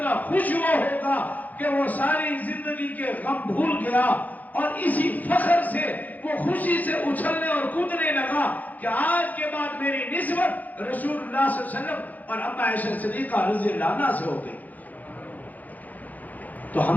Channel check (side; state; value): right; late; 0.080 ms